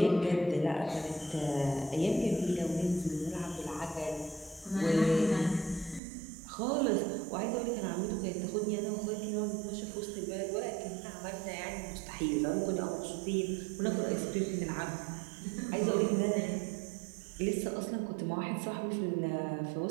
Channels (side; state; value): left; drops out; at 6.0 s